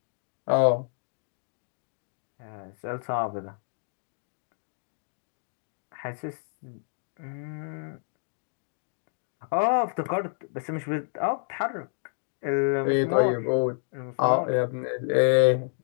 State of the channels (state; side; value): silent; right; digital silence